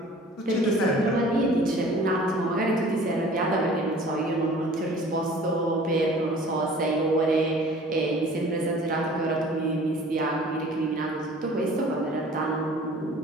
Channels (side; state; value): both; normal; correlation 0.48